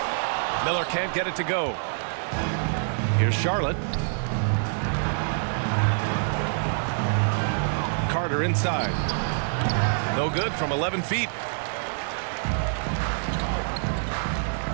Miller can't get it to go. Here's Charlotte. Carter inside. No good from 11 feet.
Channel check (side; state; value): left; silent; digital silence